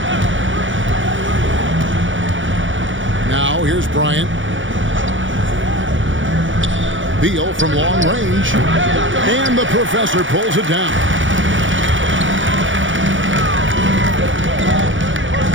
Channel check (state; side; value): late; left; 0.56 ms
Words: Now here's Bryant. Beal from long range. And the professor pulls it down.